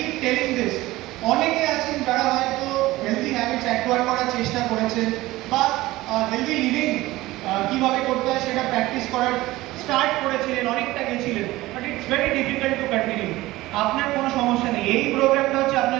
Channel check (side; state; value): left; quieter; 18.2 dB